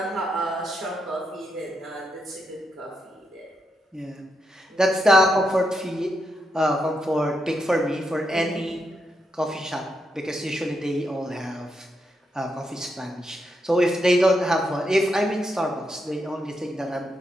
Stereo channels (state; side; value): normal; both; correlation 0.82